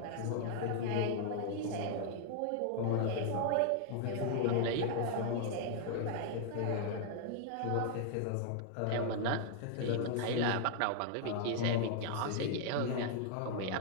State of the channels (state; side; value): different; both; correlation -0.01